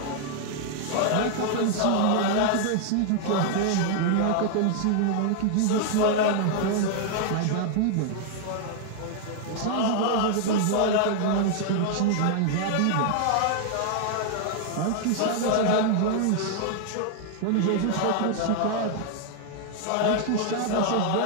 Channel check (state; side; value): different; both; correlation -0.01